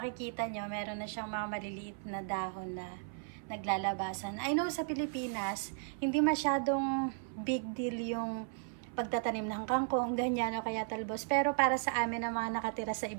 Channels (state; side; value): silent; left; 54 dB below the other